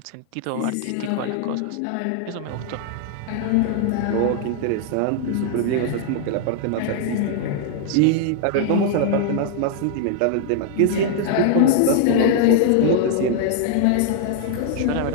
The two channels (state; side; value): different; both; correlation 0.00